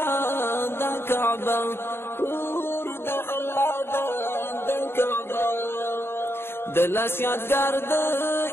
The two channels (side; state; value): right; late; 0.11 ms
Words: د کعبه کور د الله د کعبه د لاس یادګار د